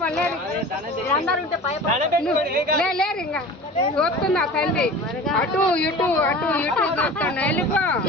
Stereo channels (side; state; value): both; normal; correlation 0.38